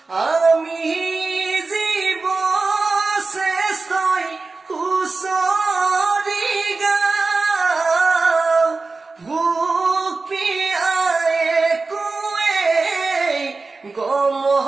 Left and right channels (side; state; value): left; quieter; 3.8 dB